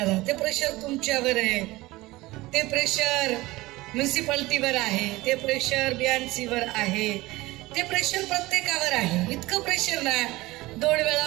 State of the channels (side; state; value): left; quieter; 19.8 dB